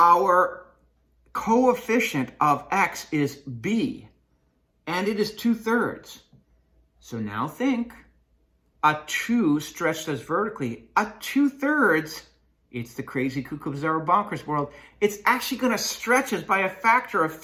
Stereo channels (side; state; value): both; identical; correlation 1.00